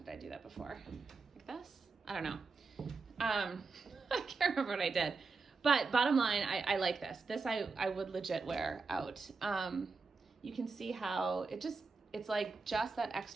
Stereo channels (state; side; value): quieter; left; 4.3 dB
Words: I do that before? Like this? I don't know. I can't remember what I did. But bottom line, I like this. This I would legit wear out. You can see how it's like just that